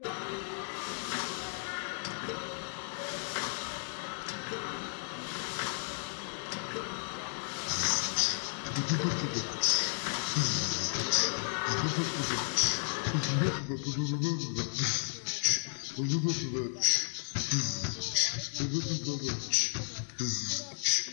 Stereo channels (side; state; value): right; silent; digital silence